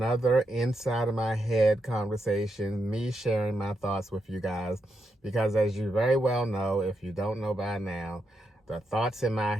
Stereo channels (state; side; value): normal; both; correlation 0.83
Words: inside of my head conversation, me sharing my thoughts with you guys, because as you very well know, if you don't know by now, the thoughts in my